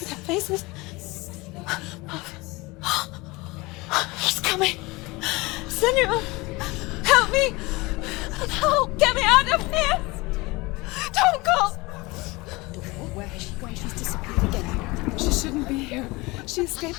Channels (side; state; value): right; quieter; 23.3 dB